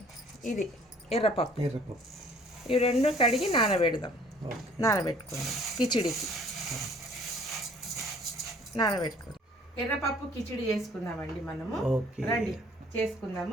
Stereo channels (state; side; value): normal; both; correlation 0.55